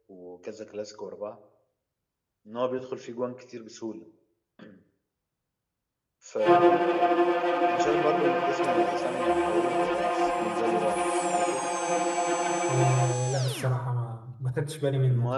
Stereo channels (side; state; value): both; identical; correlation 1.00